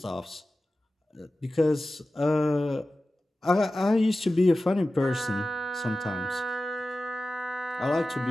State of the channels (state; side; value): normal; both; correlation 0.95